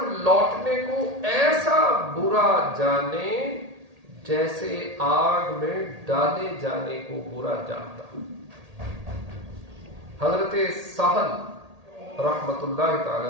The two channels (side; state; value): left; late; 1.8 ms